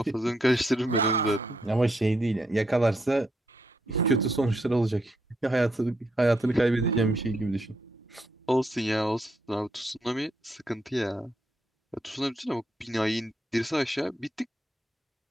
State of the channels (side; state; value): both; normal; correlation 0.77